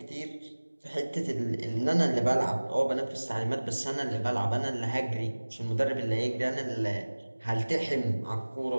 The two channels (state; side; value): inverted; both; correlation -1.00